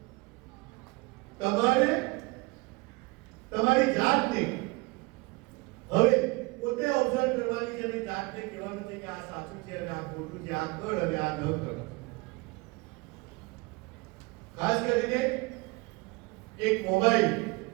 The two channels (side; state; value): left; quieter; 25.5 dB